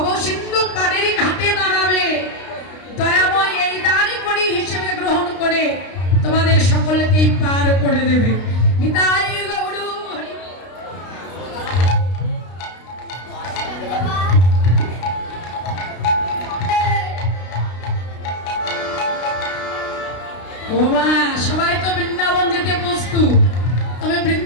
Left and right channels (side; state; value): right; late; 32 ms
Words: সিন্ধু পাড়েরই ঘাটে দাঁড়াবে, দয়াময় এই দাঁড়ি করি হিসেবে গ্রহণ করে তোমাদের সকলকেই পার করে দেবে। নিতাই গৌর হরি। ও মা, সবাই তো বৃন্দাবন যেতে প্রস্তুত, তবে